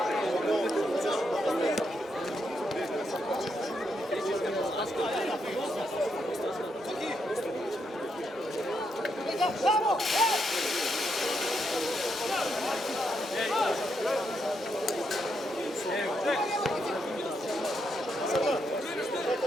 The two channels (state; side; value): normal; both; correlation 0.80